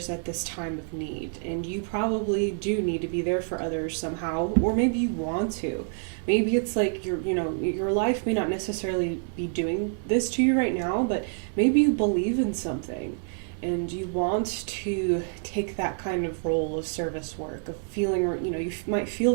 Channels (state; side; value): silent; left; 60 dB below the other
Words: at this time of need. And you probably do need to be there for others somehow, or maybe you want to. Maybe it's like your life may not necessarily be doing this to you right now, but maybe you believe in something and you want to take that kind of role of service work, of feeling, you might